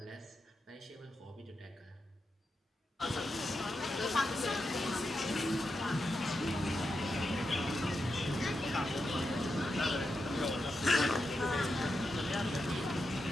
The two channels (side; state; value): both; normal; correlation 0.87